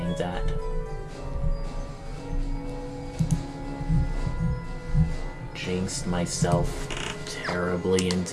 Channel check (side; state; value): both; identical; correlation 1.00